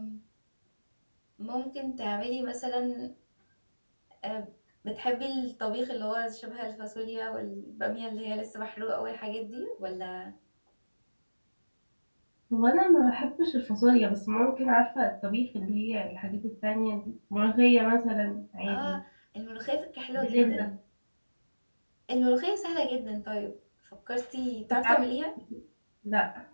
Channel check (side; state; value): both; inverted; correlation -1.00